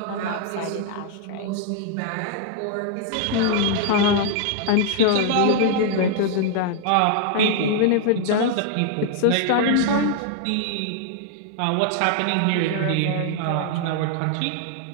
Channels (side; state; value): both; different; correlation 0.00